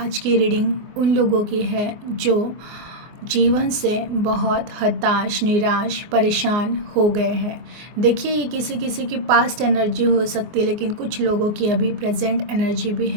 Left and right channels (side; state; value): left; late; 24 ms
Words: की रीडिंग उन लोगों की है जो जीवन से बहुत हताश, निराश, परेशान हो गए हैं। देखिए, ये किसी किसी की पास्ट एनर्जी हो सकती है, लेकिन कुछ लोगों की अभी प्रेजेंट एनर्जी भी